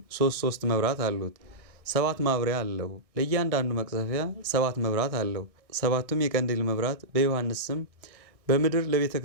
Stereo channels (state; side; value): late; left; 1.6 ms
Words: 3 መብራት አሉት። 7 ማብሪያ አለው። ለእያንዳንዱ መቅዘፊያ 7 መብራት አለው። 7ቱም የቀንዲል መብራት በዮሐንስ ስም በምድር ለቤተ